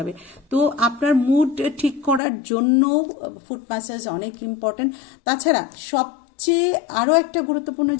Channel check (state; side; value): drops out; right; at 2.2 s